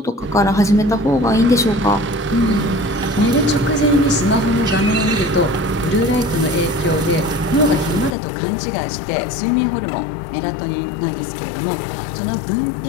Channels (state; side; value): drops out; right; at 8.2 s